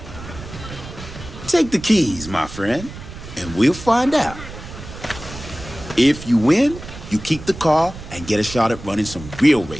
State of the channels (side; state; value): right; noise; rumble, 13 dB below the sound